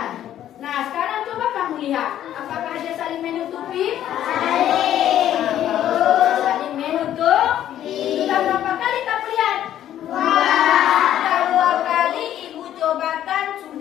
Nah, sekarang coba kamu lihat. Apakah dia saling menutupi? Saling menutupi. Sudah berapa kali kamu lihat? 2. Sudah 2 kali ibu cobakan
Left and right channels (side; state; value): right; quieter; 11.5 dB